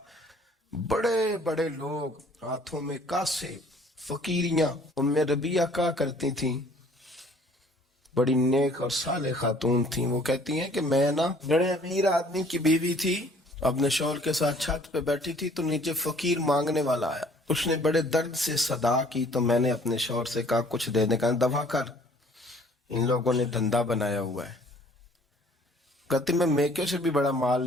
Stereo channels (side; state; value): both; normal; correlation 0.56